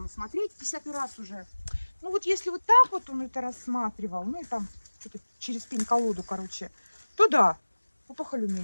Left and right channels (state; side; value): inverted; both; correlation -1.00